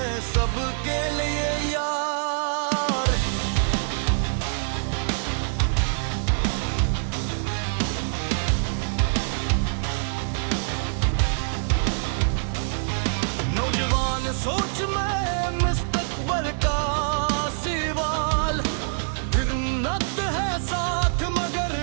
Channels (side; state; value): left; silent; 62 dB below the other